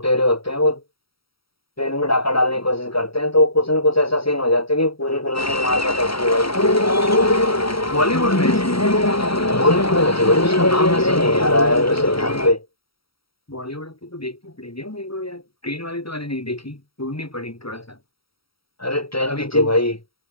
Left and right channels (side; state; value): right; late; 0.75 ms